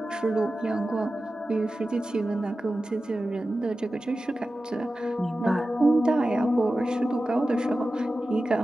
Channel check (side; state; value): both; normal; correlation 0.94